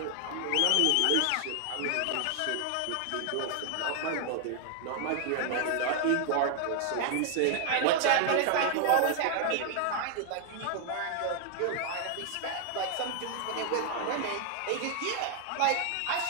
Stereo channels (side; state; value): both; different; correlation 0.00